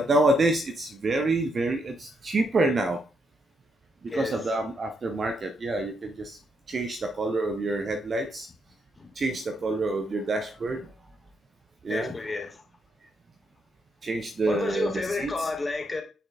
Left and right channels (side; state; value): both; normal; correlation 0.78